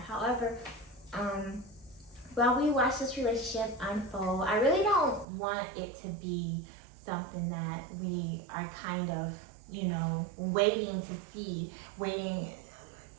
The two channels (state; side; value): drops out; left; at 5.2 s